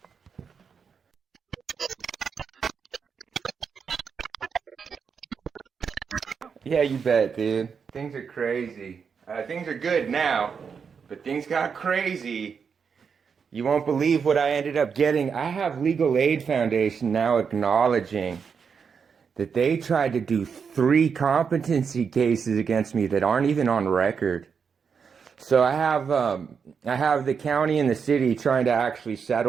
Yeah, you bet, dude. Things are crazy. Things are good now, but things got crazy. You won't believe what I ended up getting. I have Legal Aid Foundation now acknowledging that they tried to do 3 competency cases against me that aren't even on record. So I have the county and the city trying to actually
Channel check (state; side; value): quieter; left; 6.2 dB